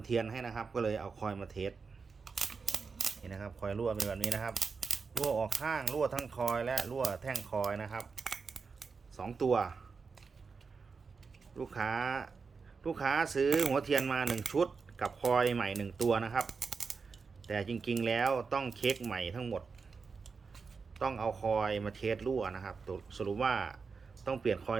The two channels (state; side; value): quieter; left; 5.0 dB